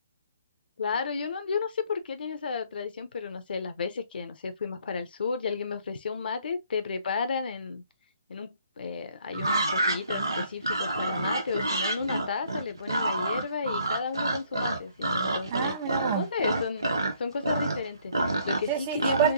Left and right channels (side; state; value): both; inverted; correlation -0.64